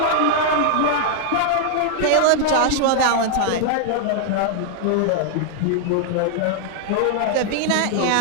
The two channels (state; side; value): different; both; correlation -0.01